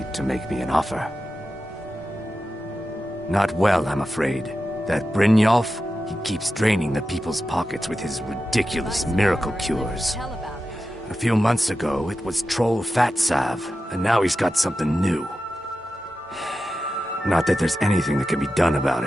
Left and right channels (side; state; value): both; normal; correlation 0.91